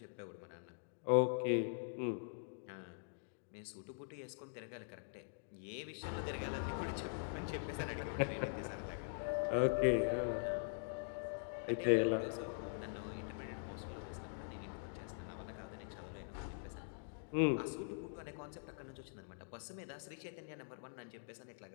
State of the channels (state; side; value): silent; right; digital silence